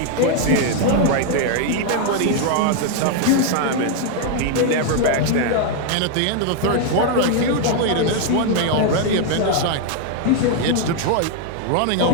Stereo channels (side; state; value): both; different; correlation 0.00